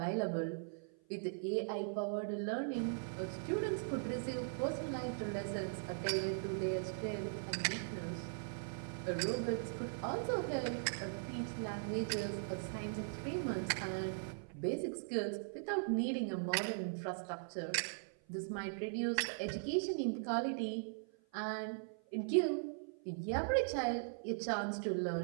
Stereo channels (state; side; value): silent; left; 51 dB below the other